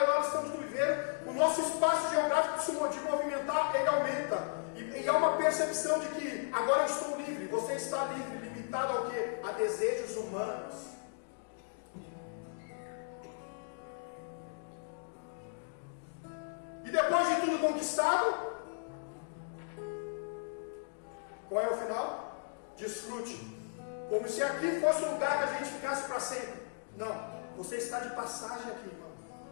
e estamos no viveiro, o nosso espaço geográfico de movimentar, ele aumenta. E há uma percepção de que agora eu estou livre. Você está livre, limitado ao quê? A desejos humanos. E depois de tudo conquistado, qual é o final? Desfrute. Como se aqui fosse um lugar que a gente ficasse para sempre. Não, você está de passagem aqui, irmão.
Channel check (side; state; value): right; silent; digital silence